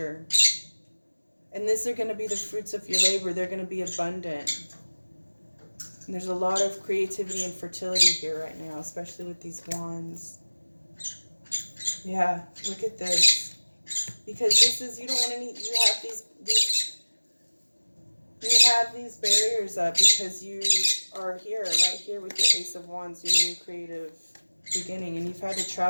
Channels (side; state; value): both; inverted; correlation -1.00